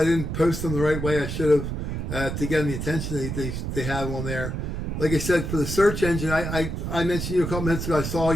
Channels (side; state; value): right; noise; rumble, 4 dB below the sound